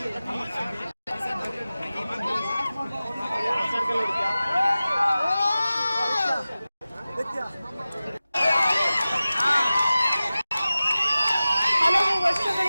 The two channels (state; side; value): inverted; both; correlation -0.96